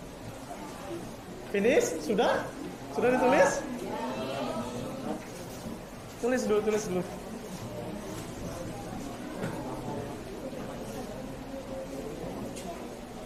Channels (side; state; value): both; identical; correlation 1.00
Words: Finish? Sudah? Sudah ditulis? Tulis dulu.